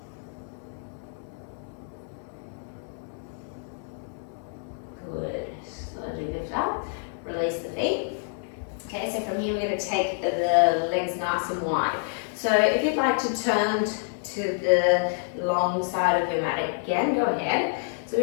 Release the feet. Okay, so from here we're going to take the legs nice and wide. So if you'd like to turn to the long side of your mat again, go ahead. So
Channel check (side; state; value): right; silent; 60 dB below the other